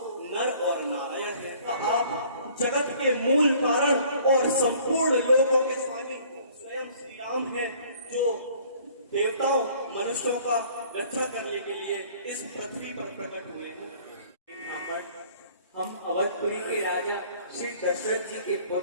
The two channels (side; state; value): both; inverted; correlation -0.55